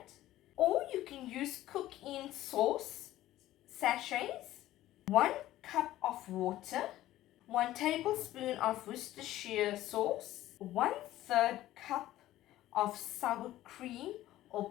or you can use cook-in sauce sachets, 1 cup of water, 1 tablespoon of Worcestershire sauce, 1/3 cup of sour cream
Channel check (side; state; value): right; quieter; 14.7 dB